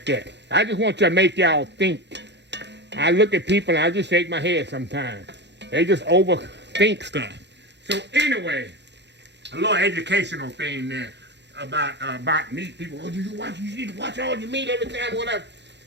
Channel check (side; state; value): left; late; 0.51 ms